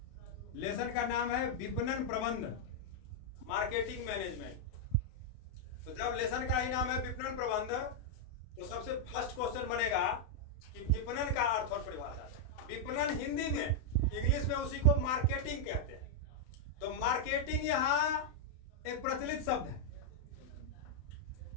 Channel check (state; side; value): late; right; 31 ms